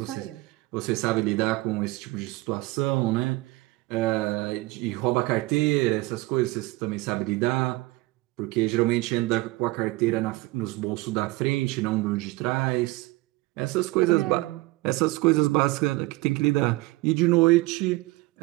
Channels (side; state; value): left; quieter; 21.1 dB